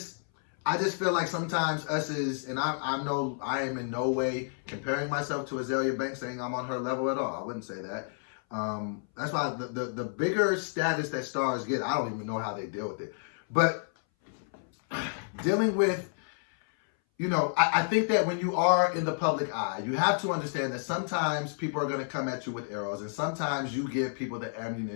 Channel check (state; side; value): silent; right; 58 dB below the other